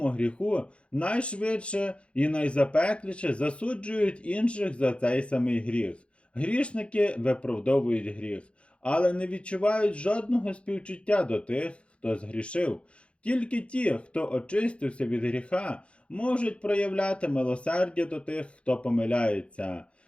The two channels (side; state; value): right; late; 0.060 ms